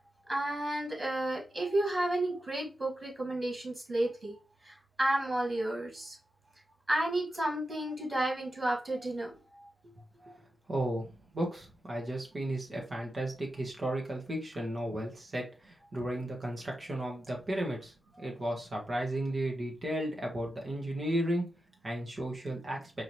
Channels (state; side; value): normal; both; correlation 0.90